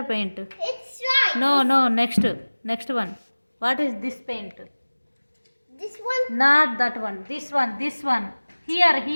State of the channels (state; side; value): inverted; both; correlation -1.00